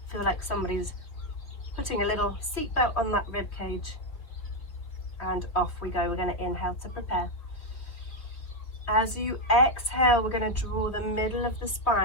Feel like somebody's putting a little seatbelt on that rib cage, and off we go. We're going to inhale to prepare. As you exhale, we're going to draw the middle of the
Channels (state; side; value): late; right; 3.3 ms